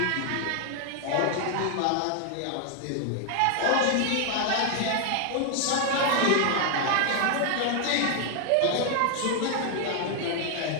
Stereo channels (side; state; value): both; different; correlation 0.00